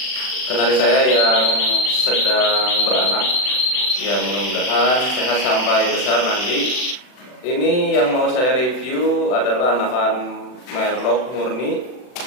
kenari saya yang sedang beranak. Ya, mudah-mudahan sehat sampai besar nanti. Ini yang mau saya review adalah anakan merlok murni.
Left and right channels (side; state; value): right; late; 40 ms